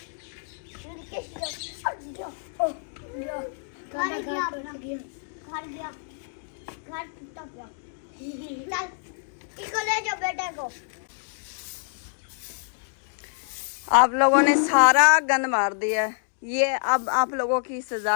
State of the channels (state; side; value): silent; right; digital silence